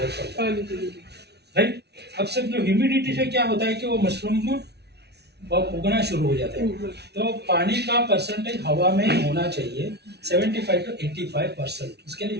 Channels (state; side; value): late; left; 0.49 ms